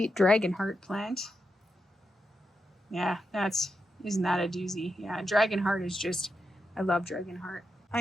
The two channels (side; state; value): both; normal; correlation 0.86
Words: dragon heart plant. Yeah, isn't that a doozy? Yeah, dragon heart is just, I love dragon heart. I